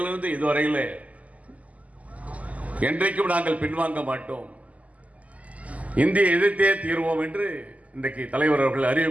இதுவரையிலே என்றைக்கும் நாங்கள் பின்வாங்க மாட்டோம், இந்திய எதிர்த்தே தீர்வோம் என்று இன்றைக்கு தலைவர் அவர்கள்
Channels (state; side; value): late; left; 0.072 ms